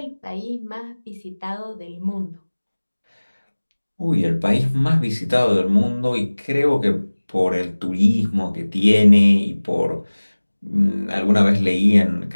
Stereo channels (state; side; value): inverted; both; correlation -1.00